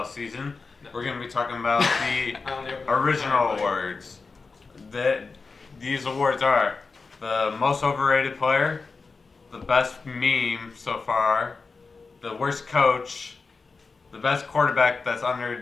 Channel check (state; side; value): quieter; right; 4.3 dB